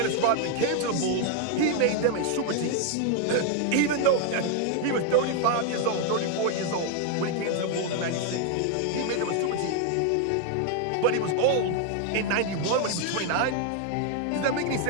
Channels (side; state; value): both; different; correlation 0.00